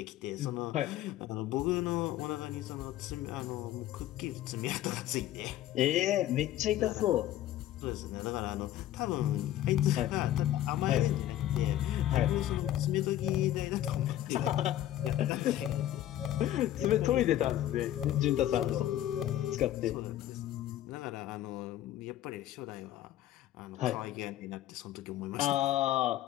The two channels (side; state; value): right; quieter; 13.0 dB